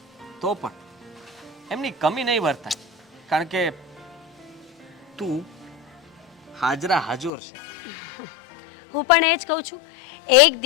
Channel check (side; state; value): right; drops out; at 7.3 s